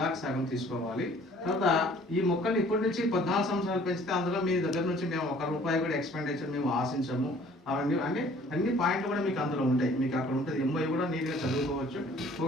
సగం తీసుకోవాలి. తర్వాత ఈ మొక్కల్ని ఇప్పటి నుంచి 14 సంవత్సరాలు పెంచితే అందులో మీ దగ్గర నుంచి మేము ₹1 కూడా ఎక్స్పెండిచర్ మేము ఆశించము. అవన్నీ అన్ని పాయింట్లు కూడా మీకు అందులో ఉంటాయి. మీకు అక్కడ ఉంటుంది. MOU కూడా నీట్గా చదువుకోవచ్చు.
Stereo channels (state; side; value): normal; both; correlation 0.54